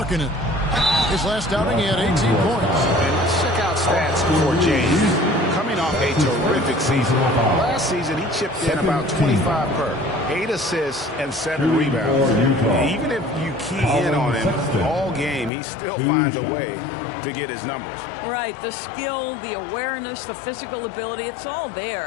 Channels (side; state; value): right; drops out; at 15.5 s